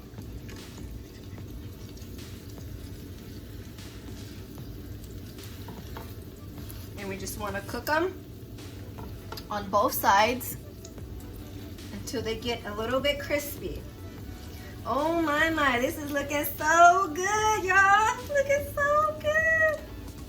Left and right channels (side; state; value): both; identical; correlation 1.00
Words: And we just want to cook them on both sides until they get a little bit crispy. Oh my, this is looking so good, y'all. Looking so good.